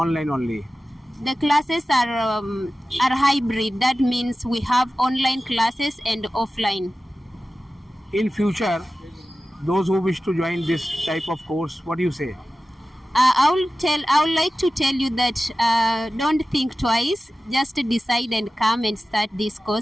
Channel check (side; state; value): both; normal; correlation 0.95